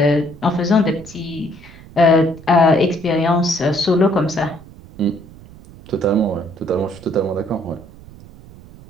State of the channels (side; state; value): right; noise; rumble, 20 dB below the sound